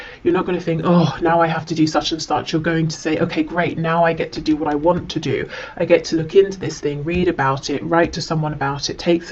you're not going to think, oh, now I have to do such and such. You're going to say, okay, great, now I get to do what I want to do. I get to look into this thing, read about it, write to someone about it, take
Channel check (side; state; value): both; identical; correlation 1.00